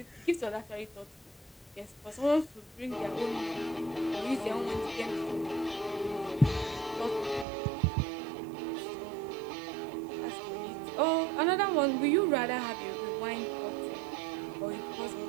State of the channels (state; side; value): drops out; left; at 7.5 s